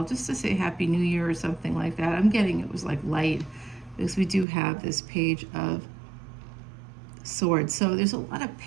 just to say Happy New Year or something like that. I'm getting it was like light, because we do have this Page of Swords. So there's a lot of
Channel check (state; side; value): drops out; left; at 4.5 s